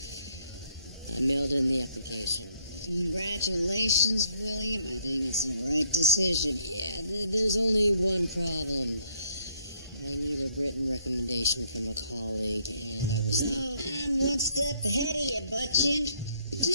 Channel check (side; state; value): both; inverted; correlation -0.69